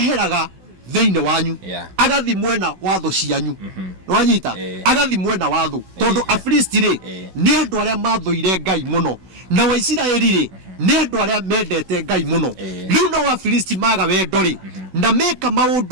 thiini wanyu agathi mwena wa thu cianyu nwanyita agathi mwena wa thu tondu Afilisti ri ni andu aria mathuire Ngai muno na wa Isiraeli ri ni andu aria mendete Ngai muno riu no Afilisti maga wendo ri na meka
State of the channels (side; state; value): left; late; 16 ms